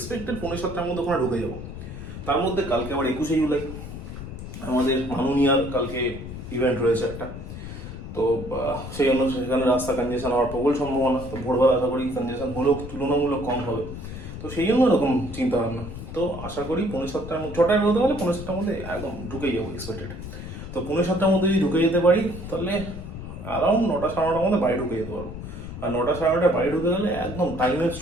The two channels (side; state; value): left; noise; rumble, 10 dB below the sound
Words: 6:45টার মধ্যে ওখানে ঢুকে যাবো। তার মধ্যে কালকে আবার 21শে জুলাই আমাদের মাননীয়ার কালকে ইভেন্ট রয়েছে একটা, তো সেই জন্য সেখানে রাস্তা কনজেশন হওয়ার প্রবল সম্ভাবনা। তো ভোরবেলা আশা করি কনজেশন হলেও তুলনামূলক কম হবে, তো সেই জন্য এরকম চিন্তা ভাবনা। তো আশা করি 6:45টার মধ্যে, 6টায় বেরোতে পারলে 6:45টার মধ্যে একদম ঢুকেই যাবো এক্সপেক্টেড। তো 6:45টার মধ্যে যদি ঢুকে যেতে পারি তাহলে অ্যারাউন্ড 9টা 9:30টার মধ্যে বাড়ি ঢুকে যেতে পারবো। আর 9টা 9:30টায় বাড়ি ঢুকে গেলে একদম টাইমের